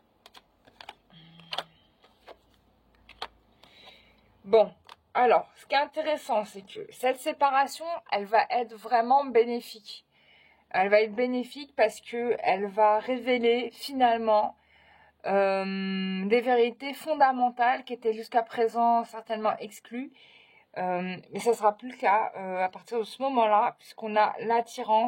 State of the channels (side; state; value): both; identical; correlation 1.00